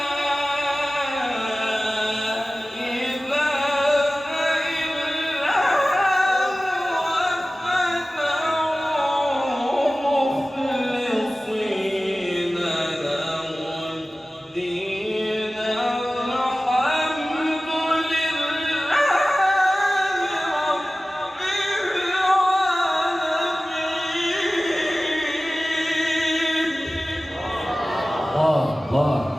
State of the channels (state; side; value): normal; both; correlation 0.96